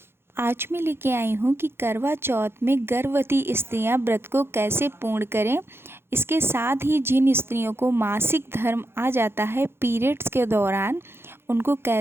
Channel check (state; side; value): late; left; 0.11 ms